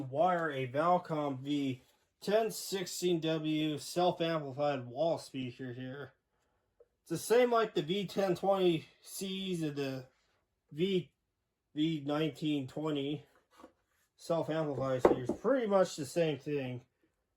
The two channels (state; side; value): identical; both; correlation 1.00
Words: wire a Valcom V 1016W self-amplified wall speaker here. It's the same like the V1020Cs and the V1920 self-amplified speakers. Pretty much the same thing,